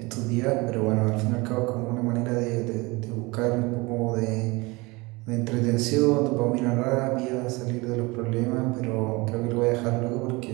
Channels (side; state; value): left; quieter; 24.3 dB